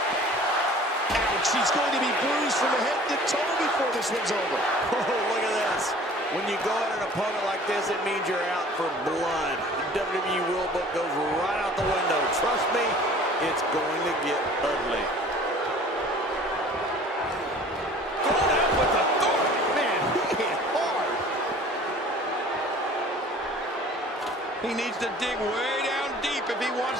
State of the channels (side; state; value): both; normal; correlation 0.48